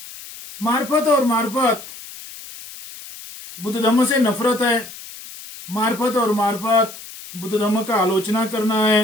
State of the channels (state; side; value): noise; left; hiss, 15 dB below the sound